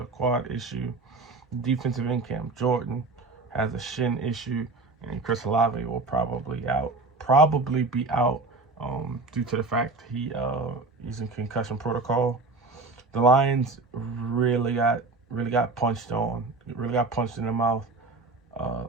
quad issue. Defensive end Cam Jordan has a shin issue, and Chris Olave will probably be out due to the fact he's in concussion protocol. The Lions really got punched in the mouth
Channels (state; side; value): quieter; left; 3.6 dB